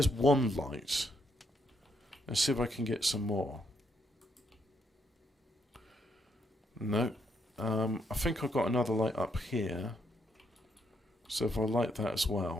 one light. Let's see if I can get some more. No. I think I've got another light up here. So if I light that as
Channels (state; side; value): normal; both; correlation 0.75